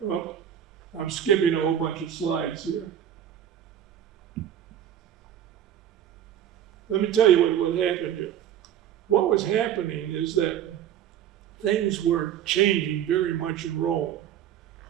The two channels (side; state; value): left; quieter; 10.3 dB